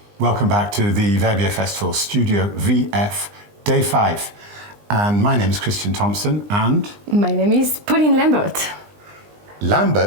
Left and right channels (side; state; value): left; late; 20 ms